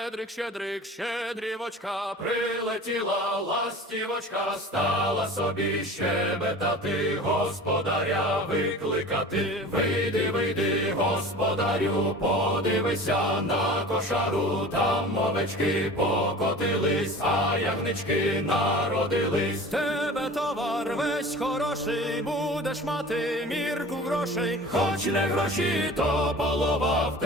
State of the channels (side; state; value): both; normal; correlation 0.39